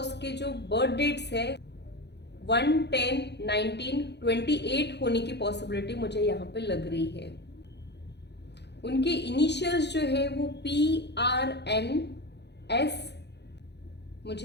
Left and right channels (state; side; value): late; right; 0.50 ms